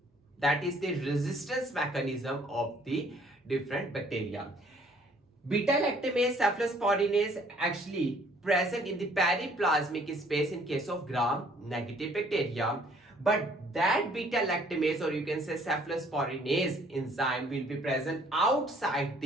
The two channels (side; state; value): both; normal; correlation 0.60